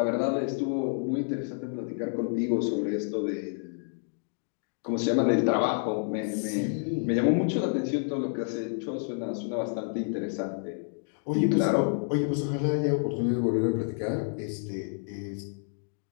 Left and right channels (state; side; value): silent; right; 58 dB below the other